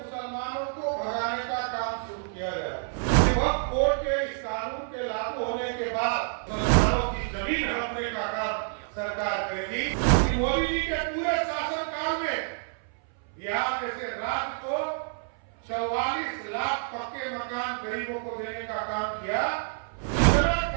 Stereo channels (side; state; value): left; silent; 59 dB below the other